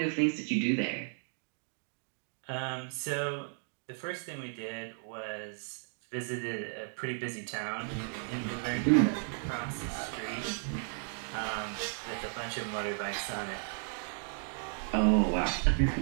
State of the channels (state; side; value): silent; left; 55 dB below the other